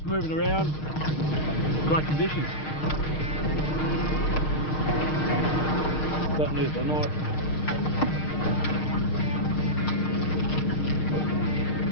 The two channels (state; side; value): late; right; 6.5 ms